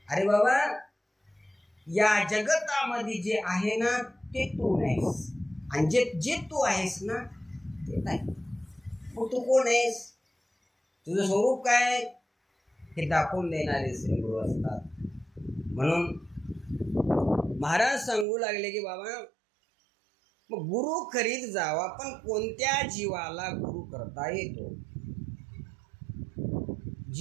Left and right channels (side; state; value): left; drops out; at 18.2 s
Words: अरे बाबा या जगतामध्ये जे आहे ना ते तू नाहीस आणि जे तू आहेस ना ते नाही. मग तू कोण आहेस? तुझं स्वरूप काय? हे दाखवून देणारे श्री गुरु असतात. म्हणून महाराज सांगू लागले की बाबा मग गुरु करीत जावा, पण कोणत्या जीवाला गुरु करता येतो?